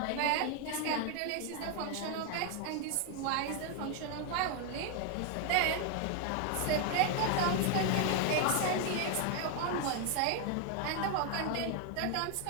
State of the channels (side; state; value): both; different; correlation 0.00